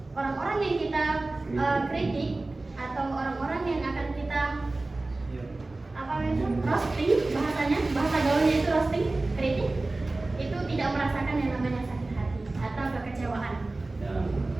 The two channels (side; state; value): left; quieter; 3.1 dB